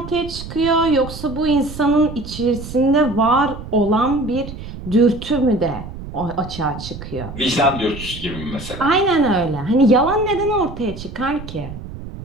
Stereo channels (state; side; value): noise; right; rumble, 11 dB below the sound